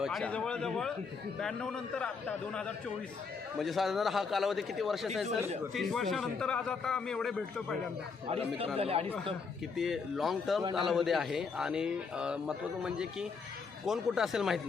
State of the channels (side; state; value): right; quieter; 5.1 dB